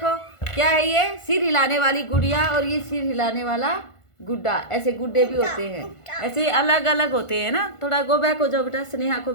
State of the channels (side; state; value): right; late; 1.5 ms